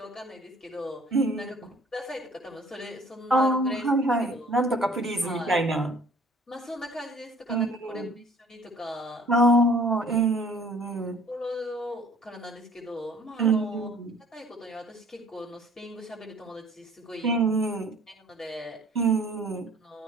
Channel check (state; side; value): normal; both; correlation 0.54